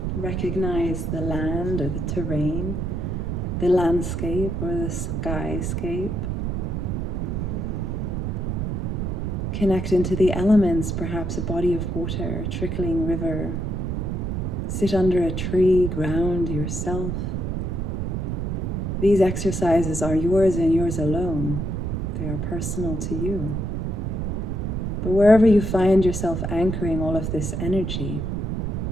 Recognize the land or the terrain, the landscape or the skyscape. Connect into the elements, perhaps a body of water, a trickling river. Sit under a tree, ground yourself. These exercises are yours and yours alone. They are personal to you. But wherever you find yourself anchoring all of this energy,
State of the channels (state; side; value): noise; right; rumble, 1 dB below the sound